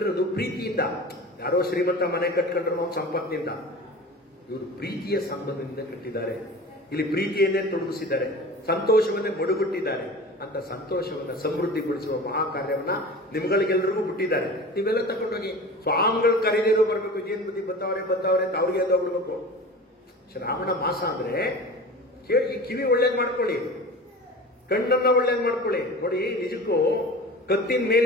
ಪ್ರೀತಿಯಿಂದ. ಯಾರೋ ಶ್ರೀಮಂತ ಮನೆ ಕಟ್ಕೊಂಡ್ರು ಸಂಪತ್ತಿನಿಂದ, ಇವರು ಪ್ರೀತಿಯ ಸಂಬಂಧದಿಂದ ಕಟ್ಟಿದ್ದಾರೆ. ಇಲ್ಲಿ ಪ್ರೀತಿಯನ್ನೇ ತೊಡಗಿಸಿದ್ದಾರೆ, ಸಂತೋಷವನ್ನೇ ಮಡುಗಟ್ಟಿದ್ದಾರೆ. ಅಂತ ಸಂತೋಷವನ್ನ ಸಮೃದ್ಧಿಗೊಳಿಸುವ ಮಹಾಕಾರ್ಯವನ್ನ ನಿಮ್ಗಳಿಗೆಲ್ಲರಿಗೂ ಬಿಟ್ಟಿದ್ದಾರೆ. ನೀವೆಲ್ಲ ತಗೊಂಡೋಗಿ ಸ್ವಾಮಿಗಳು ಕರೀದಿರೋ ಬರ್ಬೇಕು. ಏನ್ ಬುದ್ಧಿ ಬರ್ತಾವ್ರೆ ಅಂತ ಅವ್ರಿಗೆ ಎಲ್ಲ ಹೋಗ್ಬಿಡ್ಬೇಕು. ಶ್ರಾವಣ ಮಾಸ ಅಂದ್ರೆ ಕೇಳಿ, ಕಿವಿ ಒಳ್ಳೇದ್ ಮಾಡ್ಕೊಳ್ಳಿ, ಕಣ್ಣನ್ನ ಒಳ್ಳೇದ್ ಮಾಡ್ಕೊಳ್ಳಿ. ನೋಡಿ, ನಿಜಕ್ಕೂ ಕತ್ತಿನ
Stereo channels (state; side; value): normal; both; correlation 0.36